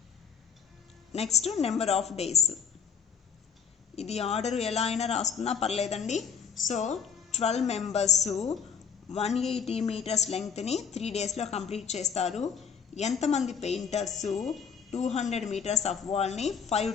next number of days. ఇది ఆర్డర్ ఎలా అయినా రాసుకున్నా పర్లేదండి. సో 12 members 180 meters లెంగ్త్ని 3 daysలో కంప్లీట్ చేస్తారు. ఎంతమంది పెయింటర్స్ 200 meters ఆఫ్ వాల్ని 5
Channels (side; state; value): right; quieter; 6.8 dB